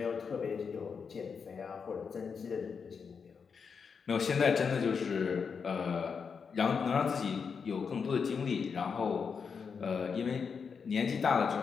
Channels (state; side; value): quieter; right; 5.9 dB